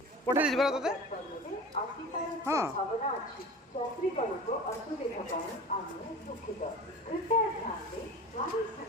पठे दीजिए बरा तोते हाँ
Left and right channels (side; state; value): both; normal; correlation 0.36